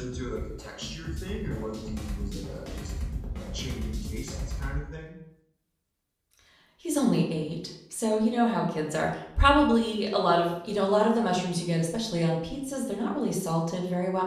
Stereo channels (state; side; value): identical; both; correlation 1.00